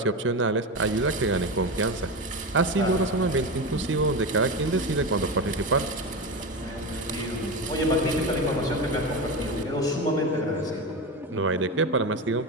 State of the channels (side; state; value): both; normal; correlation 0.20